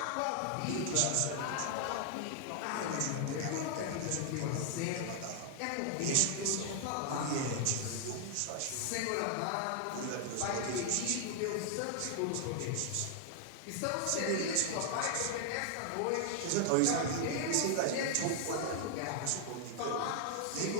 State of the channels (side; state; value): both; different; correlation 0.00